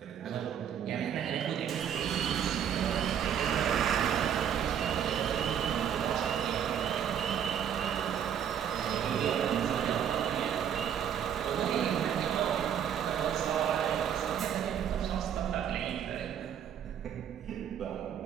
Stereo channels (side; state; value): left; quieter; 8.9 dB